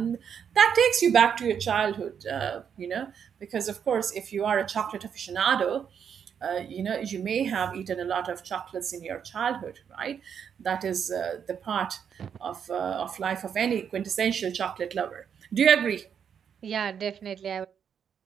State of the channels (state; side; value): quieter; left; 7.7 dB